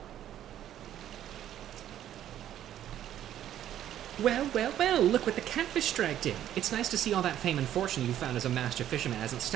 Well, well, well, look what the catfish dragged in. It's nice to see all that fame and fortune you found as a master fisherman hasn't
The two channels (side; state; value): left; quieter; 11.4 dB